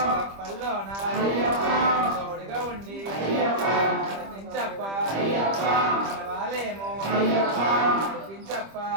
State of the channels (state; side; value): late; left; 25 ms